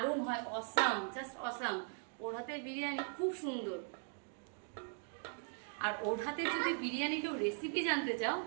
হয়, অসাম, জাস্ট অসাম। ওর হাতের বিরিয়ানি খুব সুন্দর। আর ওর হাতে যদি বিরিয়ানি কেউ রেসিপি জানতে চাও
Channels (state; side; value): silent; left; 51 dB below the other